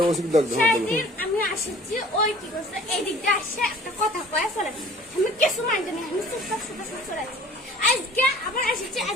আমি আসছি ওই কি করছে এই দিক দিয়ে আসে একটা কথা কয়ে ফেলে আমি কিছু মানতে নেই আমি চুপচাপ চলে আছি আজকে আবার আসছি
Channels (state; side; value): normal; both; correlation 0.49